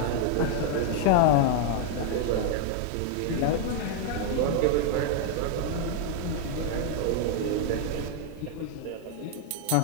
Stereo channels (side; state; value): both; different; correlation 0.00